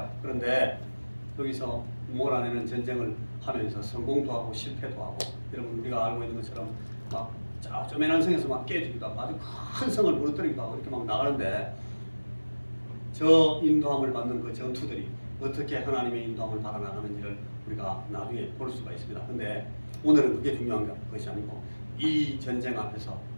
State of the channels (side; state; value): both; inverted; correlation -1.00